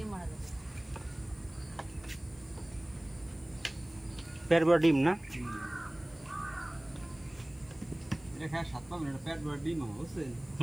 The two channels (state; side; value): noise; left; hiss, 27 dB below the sound